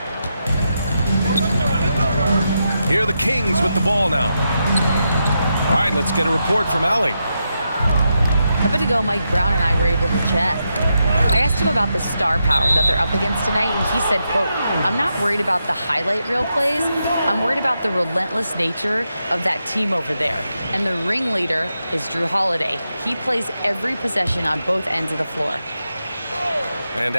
Here are the Kings with the ball now. All right, let's get a report from Allie. A bit ago, Mike Brown and I were able to chat. I asked him about the star power that they're up against tonight, and he said, quote, "I'm not worried about the highlight reel plays. I'm worried about the relentless nature of that team over there. And the ringleader is Drew Holiday. He plays every possession on both ends of the floor." And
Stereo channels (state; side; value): inverted; both; correlation -0.85